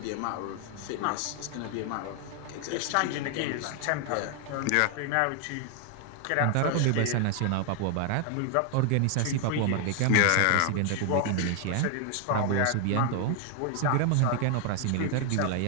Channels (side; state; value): both; different; correlation 0.00